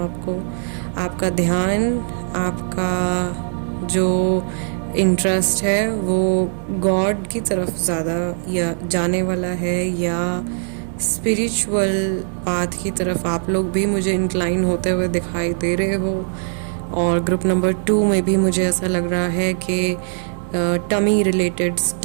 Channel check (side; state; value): left; silent; digital silence